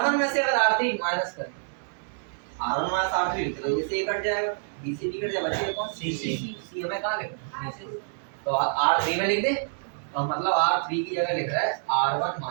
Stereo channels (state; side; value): silent; left; digital silence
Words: में से अगर R3 माइनस करें, R1 माइनस R3 तो ये से कट जाएगा, B से B कट जाएगा, बचेगा कौन? C हमें कहाँ लिखना है? तो R3 में लिख दे, तो मतलब R3 की जगह लिख रहा है R1